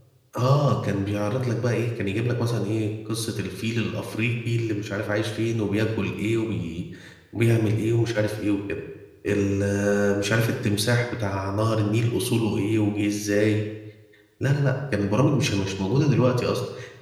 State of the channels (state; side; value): identical; both; correlation 1.00